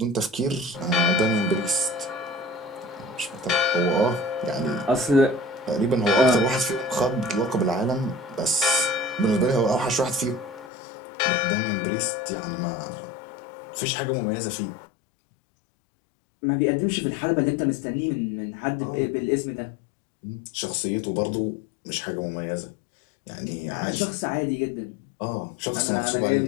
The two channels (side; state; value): right; drops out; at 10.7 s